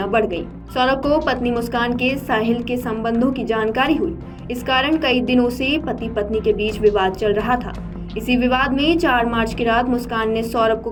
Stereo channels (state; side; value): identical; both; correlation 1.00